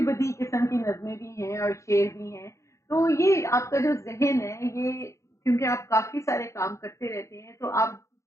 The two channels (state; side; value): late; right; 0.14 ms